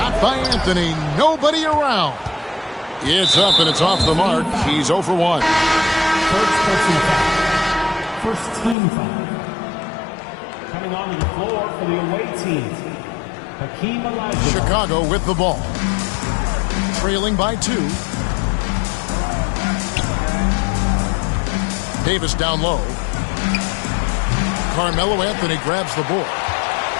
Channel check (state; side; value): drops out; right; at 8.8 s